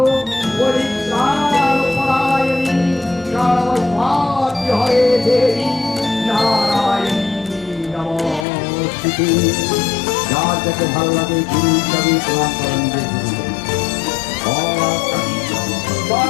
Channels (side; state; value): right; drops out; at 8.5 s